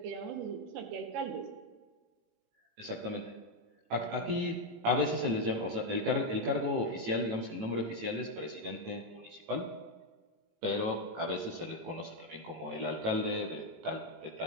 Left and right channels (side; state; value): left; late; 18 ms